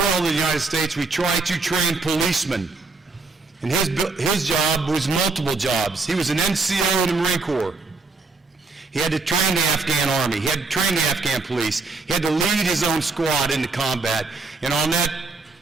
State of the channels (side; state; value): left; quieter; 3.9 dB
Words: in the United States, we try to train policemen. And his job was multiple jobs. He was an NCO in the Marine Corps. He had to train the Afghan Army. He had to train the Afghan police. He had to lead his own squad into combat. And on that